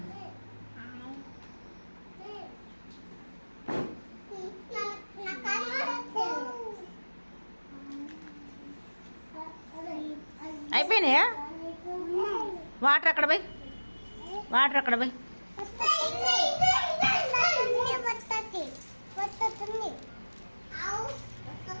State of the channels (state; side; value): inverted; both; correlation -1.00